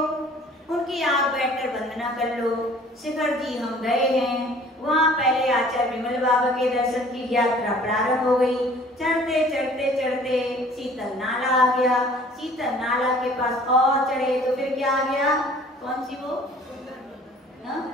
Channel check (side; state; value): both; normal; correlation 0.51